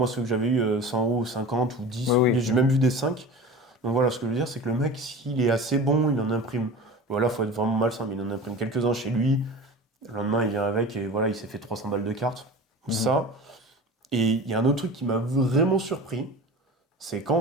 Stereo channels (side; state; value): both; normal; correlation 0.35